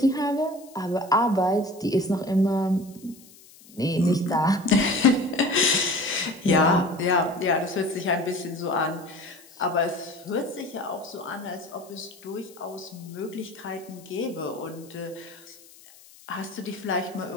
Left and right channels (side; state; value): left; noise; hiss, 23 dB below the sound